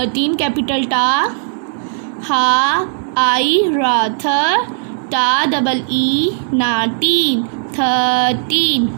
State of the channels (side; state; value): left; silent; 66 dB below the other